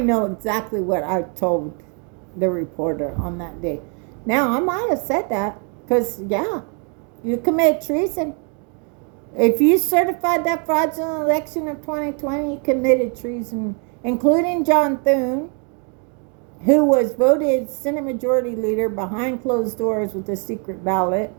exactly what I told the reporter on that day. Now, I might have said that because, yeah, you commit treason. If you certified that fraudulent election of 2020, you committed treason, including John Thune, who was voted Senate Majority Leader behind closed doors with a secret ballot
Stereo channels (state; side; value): quieter; left; 38.7 dB